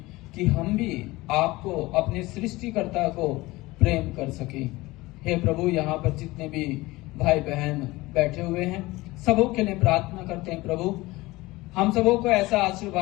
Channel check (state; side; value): quieter; right; 20.3 dB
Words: कि हम भी आपको, अपने सृष्टिकर्ता को प्रेम कर सके। हे प्रभु, यहाँ पर जितने भी भाई बहन बैठे हुए हैं, सबों के लिए प्रार्थना करते हैं प्रभु, हम सबों को ऐसा